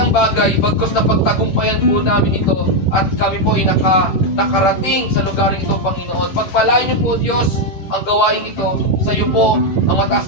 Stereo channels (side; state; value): right; late; 11 ms